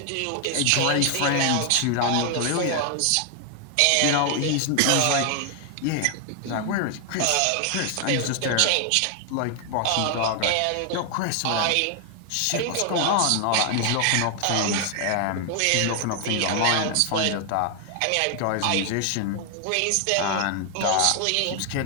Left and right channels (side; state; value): both; different; correlation 0.00